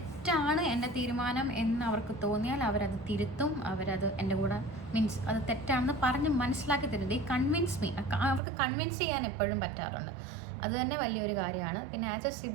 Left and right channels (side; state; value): left; drops out; at 8.4 s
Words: എൻ്റെ തീരുമാനം എന്ന് അവർക്ക് തോന്നിയാൽ അവരത് തിരുത്തും, അവരത് എൻ്റെ കൂടെ മീൻസ് അത് തെറ്റാണെന്ന് പറഞ്ഞ് മനസ്സിലാക്കി തരും. ദേ കൺവിൻസ് മീ. അവർക്ക് കൺവിൻസ് ചെയ്യാൻ എപ്പോഴും പറ്റാറുണ്ട്, അത് തന്നെ വലിയൊരു കാര്യമാണ്. പിന്നെ ആസ് എ